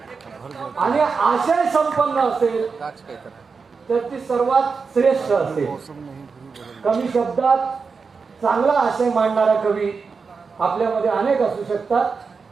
आणि आशय संपन्न असेल तर ती सर्वात श्रेष्ठ असेल. कमी शब्दात चांगला आशय मांडणारा कवी आपल्यामध्ये अनेक असू शकतात.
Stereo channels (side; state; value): left; quieter; 5.0 dB